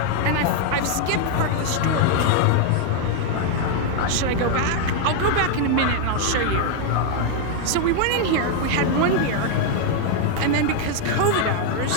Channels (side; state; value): both; different; correlation 0.00